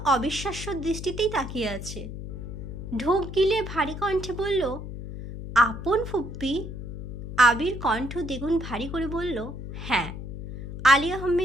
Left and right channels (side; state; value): left; noise; hum, 8 dB below the sound